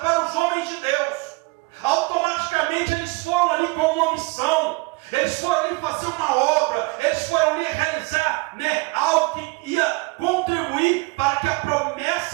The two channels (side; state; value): left; quieter; 26.0 dB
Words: os homens de Deus. Automaticamente eles foram ali com uma missão. Eles foram ali fazer uma obra. Eles foram ali realizar algo que ia contribuir para que a